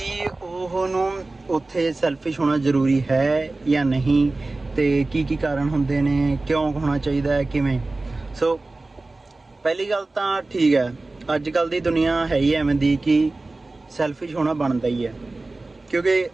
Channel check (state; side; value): quieter; left; 3.2 dB